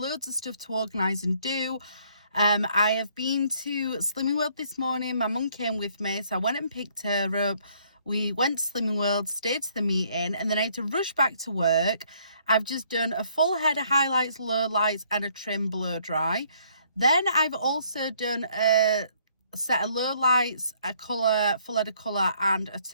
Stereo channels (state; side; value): inverted; both; correlation -0.65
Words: of stuff to organise and do. I have been to Slimming World this morning. My mum came with me, so I went and picked her up. We went to Slimming World, stayed to the meeting, and then I had to rush back to work. I've just done a full head of highlights, lowlights, and a trim blow dry. Then I've also done a set of lowlights, a colour, full head of colour, and a